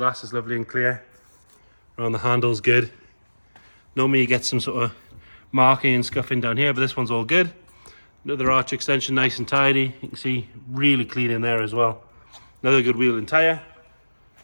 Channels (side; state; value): both; inverted; correlation -1.00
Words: is lovely and clear. Around the handles, good. Normally you get some sort of marking and scuffing down here, but this one's all good. Another arch extension, nice and tidy. You can see really clean in there as well. Another good wheel and tyre.